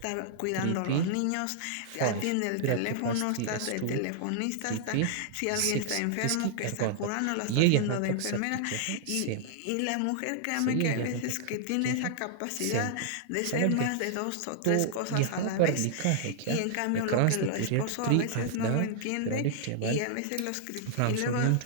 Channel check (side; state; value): both; different; correlation -0.01